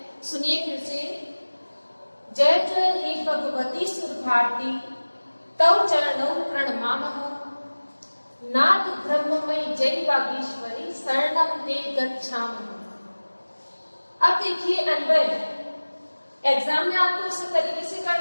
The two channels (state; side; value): inverted; both; correlation -1.00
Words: सुनिए फिर से। जय जय हे भगवती सुर भारती, तव चरणौ प्रणमामः। नाथ ब्रह्ममयी जय वागीश्वरी, शरणम ते गच्छामः। अब देखिए, अन्वय एग्जाम में आपको इस तरीके से